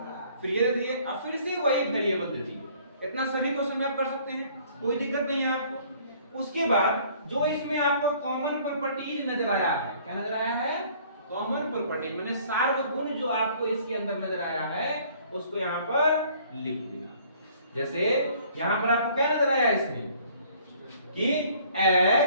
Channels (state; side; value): inverted; both; correlation -0.57